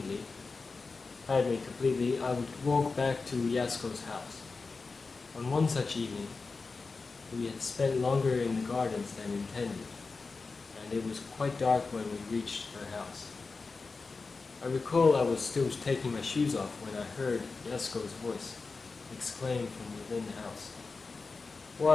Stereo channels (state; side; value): quieter; right; 4.2 dB